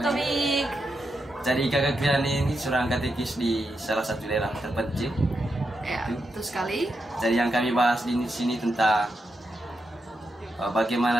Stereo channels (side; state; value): both; normal; correlation 0.85